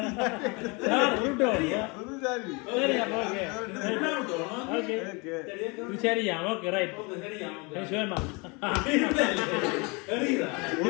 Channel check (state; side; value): quieter; right; 29.3 dB